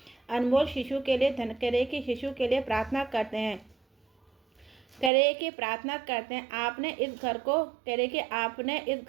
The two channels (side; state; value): left; drops out; at 5.1 s